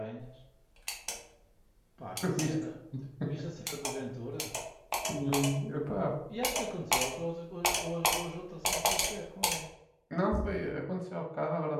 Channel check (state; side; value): identical; both; correlation 1.00